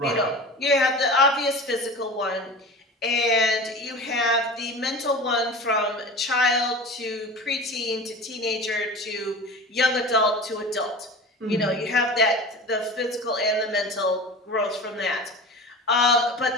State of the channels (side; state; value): both; normal; correlation 0.34